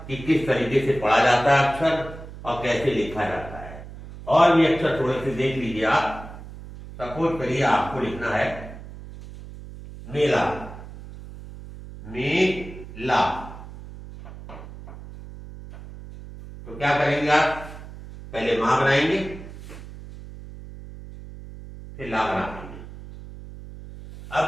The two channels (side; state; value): right; noise; hum, 14 dB below the sound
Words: कि किस तरीके से पढ़ा जाता है अक्षर और कैसे लिखा जाता है। और भी अक्षर थोड़े से देख लीजिए आप। सपोज करिए आपको लिखना है मेला, मेला, तो क्या करेंगे आप, पहले मां बनाएंगे फिर ला बनाएंगे।